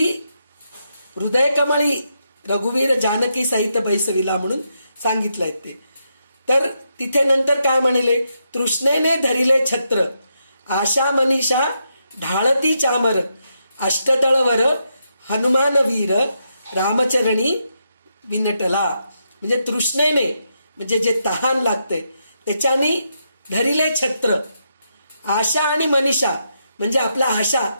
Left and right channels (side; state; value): both; inverted; correlation -0.82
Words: हृदय कमळी रघुवीर जानकी सहित बैसविला म्हणून सांगितलंय ते. तर तिथे नंतर काय म्हणले, तृष्णेने धरिले छत्र, आशा मनीषा ढाळती चामर, अष्टदळवर हनुमान वीर, रामचरणी विनटला. म्हणजे तृष्णेने, म्हणजे जे तहान लागते त्याच्याने धरिले छत्र, आशा आणि मनीषा म्हणजे आपला आशा,